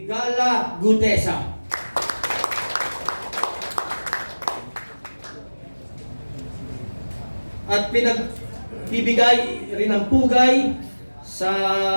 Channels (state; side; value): inverted; both; correlation -1.00